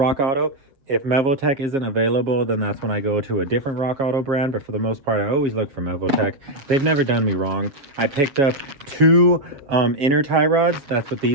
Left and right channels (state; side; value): late; left; 7.4 ms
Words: Auto. If Mevoltech isn't available, then that's when I go to a different Rock Auto brand. But for the most part, I always look for Mevoltech. They've never done me wrong. I picked up 2 inner tie rods. That's what